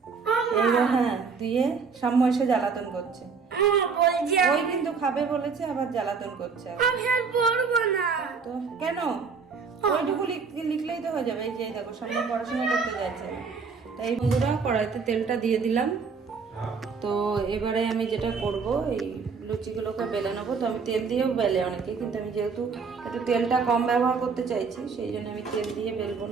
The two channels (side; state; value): left; quieter; 5.3 dB